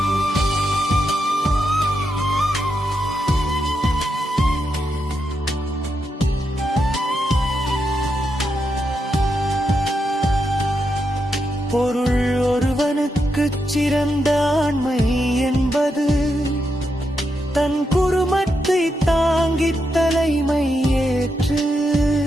பொருள் ஒருவனுக்குச் சிறந்த ஆண்மை என்பது தன் குடும்பத்தை தாங்கித் தலைமை ஏற்று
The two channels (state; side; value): normal; both; correlation 0.84